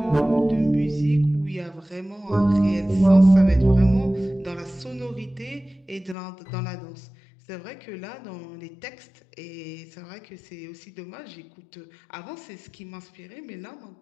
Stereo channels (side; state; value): right; drops out; at 6.2 s